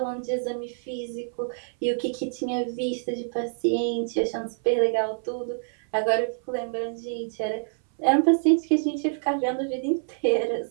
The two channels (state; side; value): silent; left; 61 dB below the other